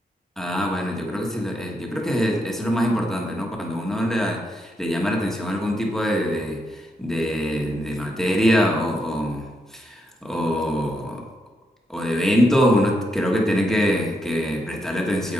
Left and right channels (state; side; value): normal; both; correlation 0.81